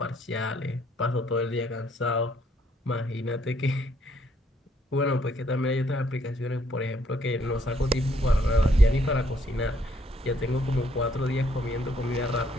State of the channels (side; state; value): both; normal; correlation 0.69